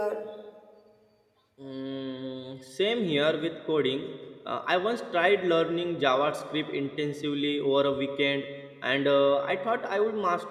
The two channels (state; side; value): identical; both; correlation 1.00